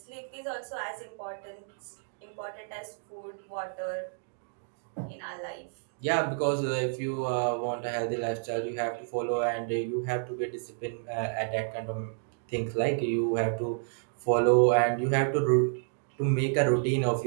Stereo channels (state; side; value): silent; left; digital silence